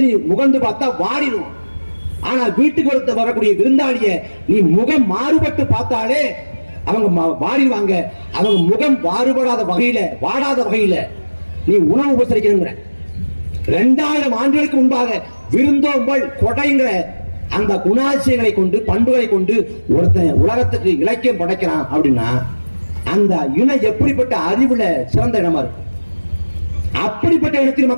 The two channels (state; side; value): inverted; both; correlation -1.00